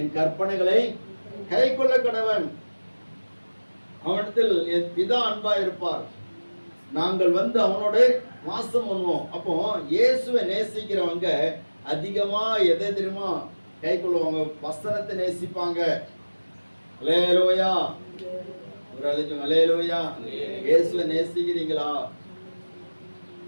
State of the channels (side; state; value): both; inverted; correlation -1.00